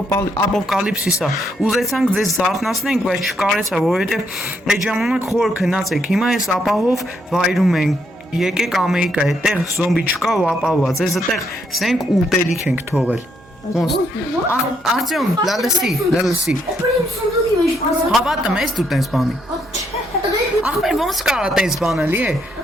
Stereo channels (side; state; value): both; normal; correlation 0.74